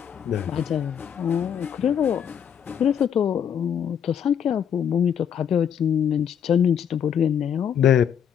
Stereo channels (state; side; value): quieter; right; 8.4 dB